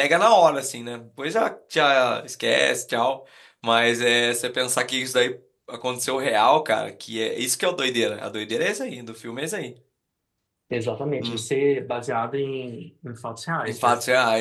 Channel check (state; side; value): identical; both; correlation 1.00